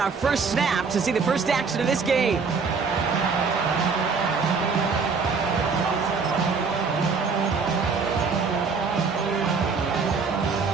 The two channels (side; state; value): left; quieter; 5.0 dB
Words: our first snap to see the first action of this game.